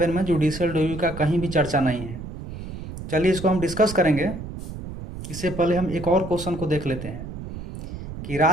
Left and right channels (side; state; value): right; noise; rumble, 10 dB below the sound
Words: में जुडिशियल रिव्यू का कहीं भी चर्चा नहीं है। चलिए इसको हम डिस्कस करेंगे। इससे पहले हम एक और क्वेश्चन को देख लेते हैं कि